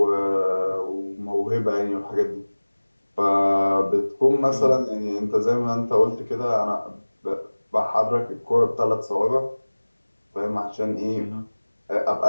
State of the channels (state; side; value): inverted; both; correlation -1.00